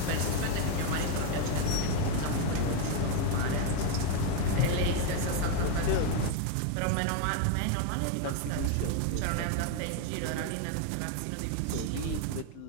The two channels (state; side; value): different; both; correlation 0.01